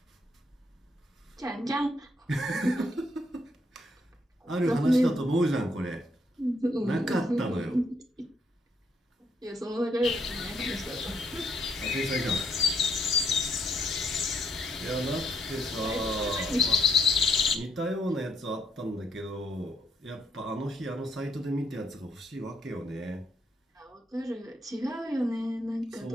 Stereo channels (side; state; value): both; normal; correlation 0.74